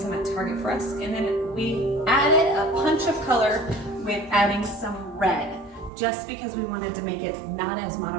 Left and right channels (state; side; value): drops out; left; at 5.9 s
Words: at Target for us. And then we added a punch of color with adding some red, just because we wanted to make it not as